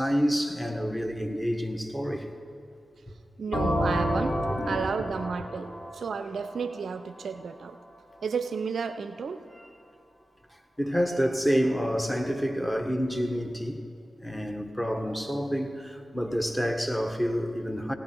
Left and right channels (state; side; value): normal; both; correlation 0.94